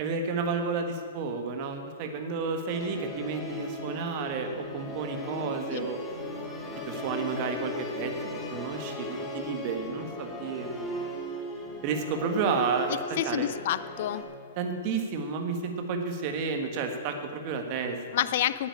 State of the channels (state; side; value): normal; both; correlation -0.19